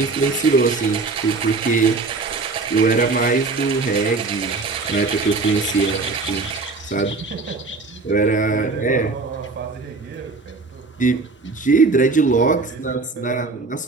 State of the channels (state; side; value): quieter; left; 3.9 dB